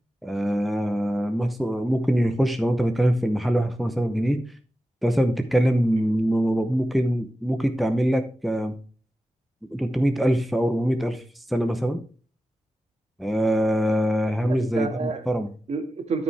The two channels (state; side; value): normal; both; correlation 0.93